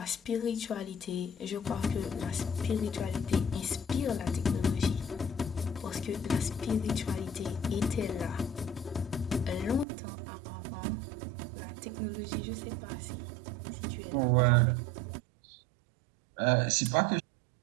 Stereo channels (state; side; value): drops out; left; at 9.9 s